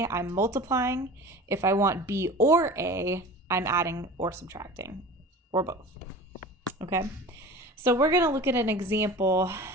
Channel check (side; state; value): both; normal; correlation 0.38